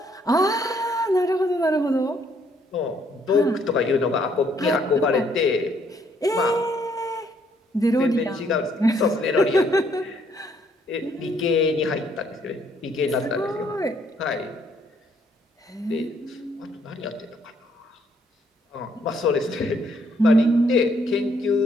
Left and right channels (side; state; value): both; normal; correlation 0.68